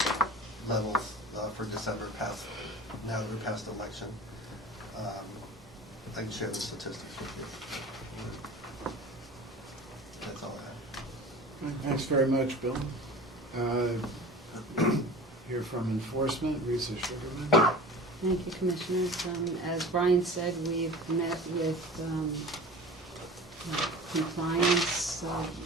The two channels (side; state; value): both; normal; correlation 0.38